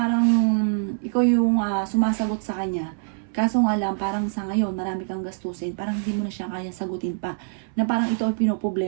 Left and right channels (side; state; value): left; silent; 62 dB below the other